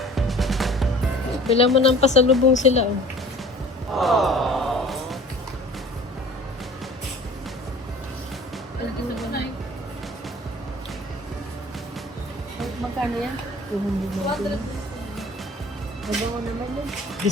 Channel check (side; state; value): both; normal; correlation 0.46